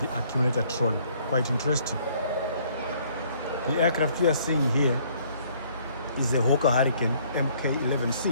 accumulator trolley. Quite interesting. The aircraft we are seeing here is a Hawker Hurricane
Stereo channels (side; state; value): both; inverted; correlation -0.62